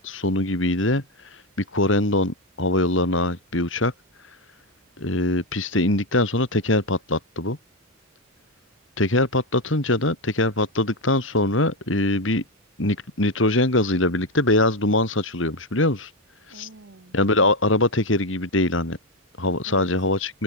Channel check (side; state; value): both; normal; correlation 0.10